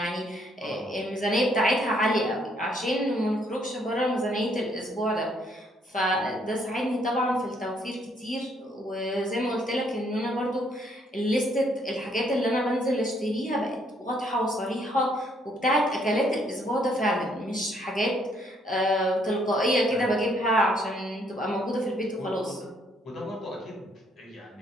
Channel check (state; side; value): normal; both; correlation 0.69